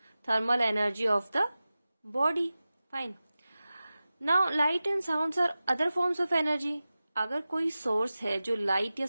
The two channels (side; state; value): both; inverted; correlation -0.95